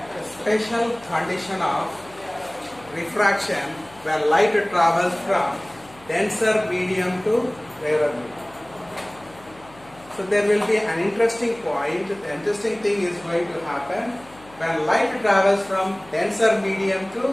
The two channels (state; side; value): noise; left; hum, 24 dB below the sound